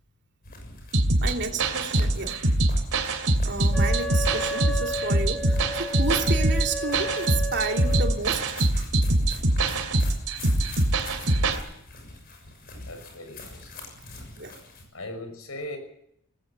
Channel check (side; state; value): both; normal; correlation 0.67